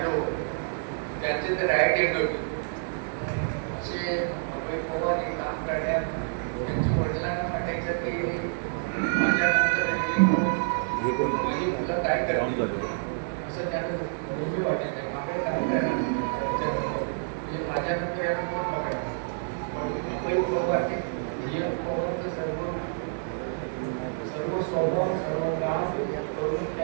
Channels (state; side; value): silent; left; 59 dB below the other